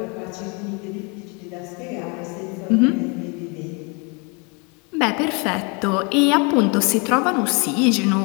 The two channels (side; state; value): right; quieter; 31.9 dB